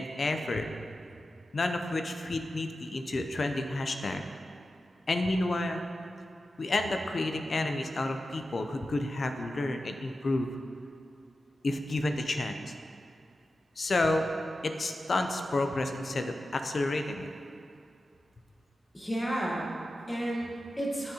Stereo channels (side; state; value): both; normal; correlation 0.93